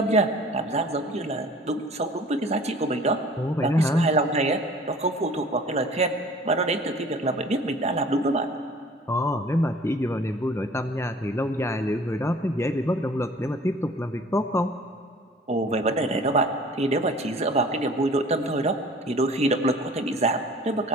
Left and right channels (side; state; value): both; normal; correlation 0.48